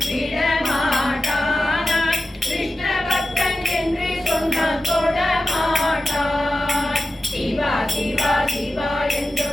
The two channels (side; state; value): both; normal; correlation 0.93